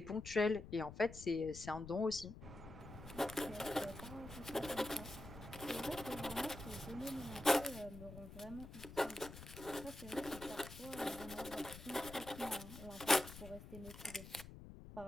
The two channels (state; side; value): noise; left; rumble, 13 dB below the sound